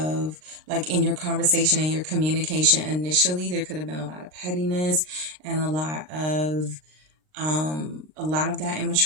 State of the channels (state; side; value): late; left; 39 ms